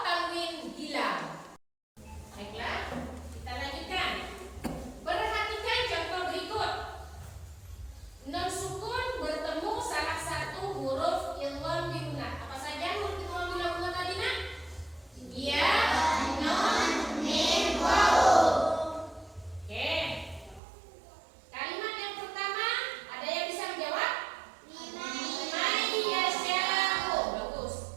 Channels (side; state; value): left; drops out; at 20.6 s